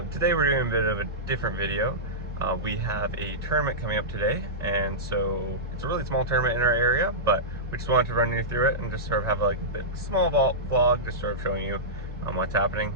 Today we're doing a bit of a different video. We have a tournament coming up today, and so it's a really small tournament in our area, but we just wanted to run you through it and just sort of have like a small vlog, just sort of showing you what's happening.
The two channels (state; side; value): normal; both; correlation -0.15